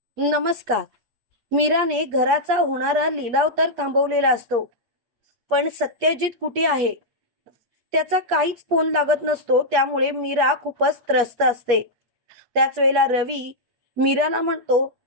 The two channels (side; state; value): left; late; 8.4 ms